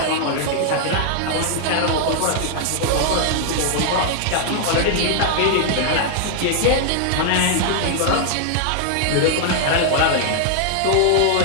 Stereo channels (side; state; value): both; different; correlation 0.00